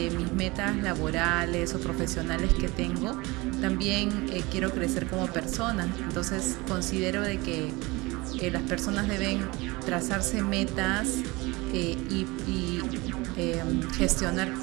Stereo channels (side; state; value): left; quieter; 23.4 dB